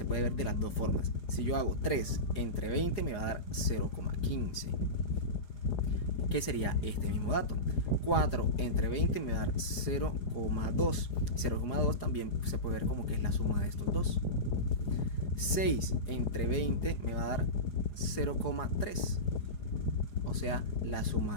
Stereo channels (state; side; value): late; right; 4.9 ms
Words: puede ver de las dos formas. Si yo hago 3 entre 20 me va a dar 0,15. ¿Qué sería este mismo dato? 4 entre 20 me va a dar 0,2. 0,2 también se puede ver como que es la suma de estos dos. 6 entre 20 me va a dar 0,3. O sea, la